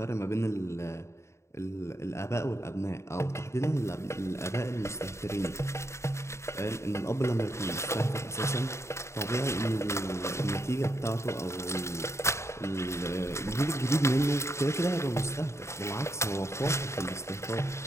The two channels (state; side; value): late; right; 0.13 ms